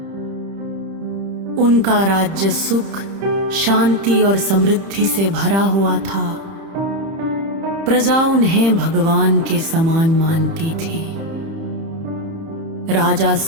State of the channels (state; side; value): late; left; 30 ms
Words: उनका राज्य सुख, शांति और समृद्धि से भरा हुआ था। प्रजा उन्हें भगवान के समान मानती थी। राजा